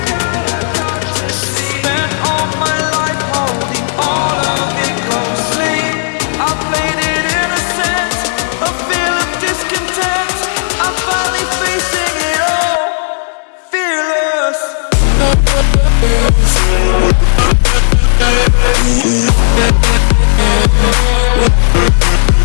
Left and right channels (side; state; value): right; silent; digital silence